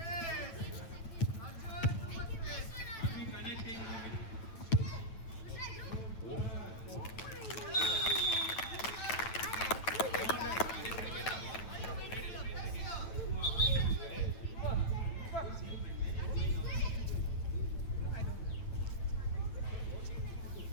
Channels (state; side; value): late; right; 9.0 ms